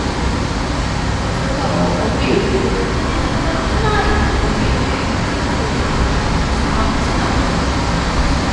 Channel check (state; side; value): identical; both; correlation 1.00